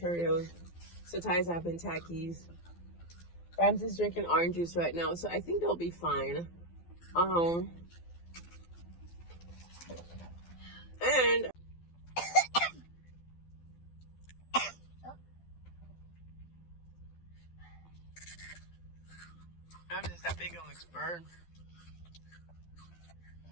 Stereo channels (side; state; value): right; late; 12 ms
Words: Setai's having Takis. Ramses drinking orange juice right now, so I think they'll be fine. And Ramses, that big one looks burned.